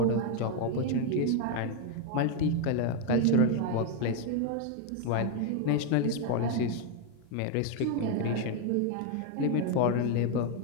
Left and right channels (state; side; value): different; both; correlation 0.00